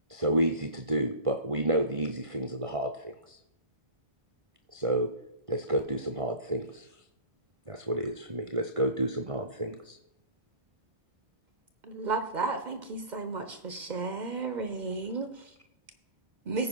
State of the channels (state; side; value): late; left; 2.1 ms